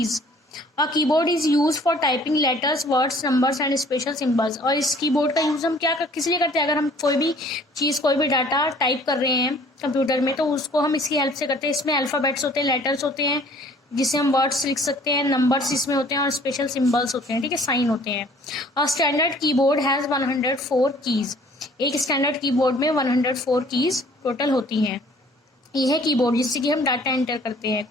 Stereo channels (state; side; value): normal; both; correlation 0.54